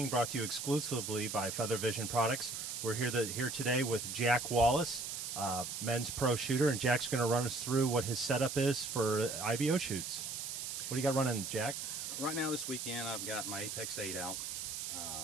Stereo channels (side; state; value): right; noise; hiss, 5 dB below the sound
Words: brought to you exclusively by Feather Vision Products. We're here today with Jack Wallace, men's pro shooter, and Jack's going to run us through what his setup is for IBO shoots. What do you got running, Jack? Right now this weekend I've got my Apex 8 out.